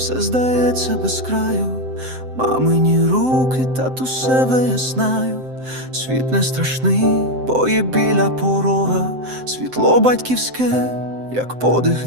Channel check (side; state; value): left; late; 7.8 ms